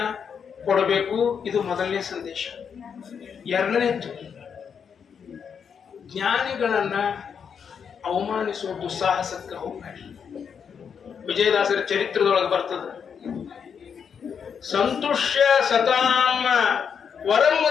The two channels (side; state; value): right; quieter; 7.0 dB